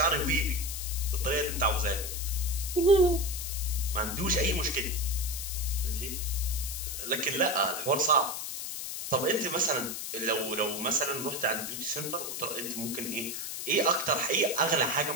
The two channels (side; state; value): left; noise; hiss, 5 dB below the sound